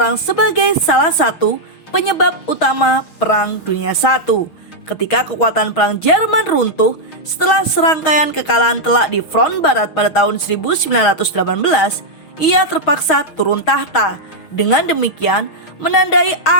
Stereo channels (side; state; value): right; late; 6.3 ms